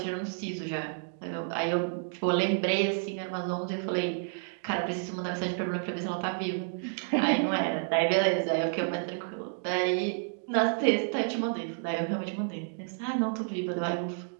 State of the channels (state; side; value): silent; left; digital silence